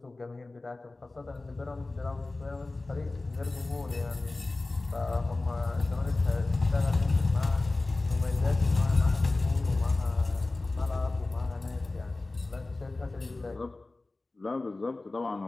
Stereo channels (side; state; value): right; quieter; 3.2 dB